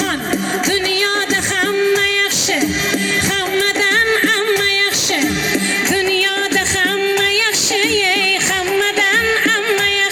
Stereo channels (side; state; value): both; identical; correlation 1.00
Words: dunyoda hamma yaxshi, hammadan amma yaxshi, dunyoda hamma yaxshi, hammadan amma